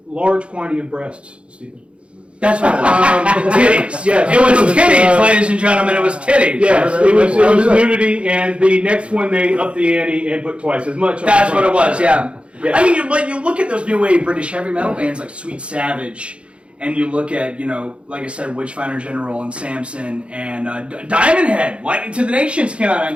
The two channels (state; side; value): late; left; 0.059 ms